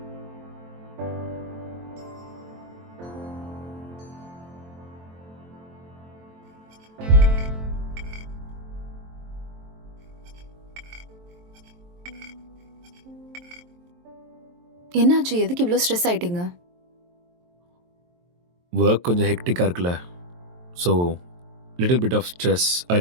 என்னாச்சு? எதுக்கு இவ்வளோ stress ஆயிட்டீங்க? Work கொஞ்சம் ஹெக்டிக்காக இருக்குல்ல, so little bit of stress.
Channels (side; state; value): left; late; 23 ms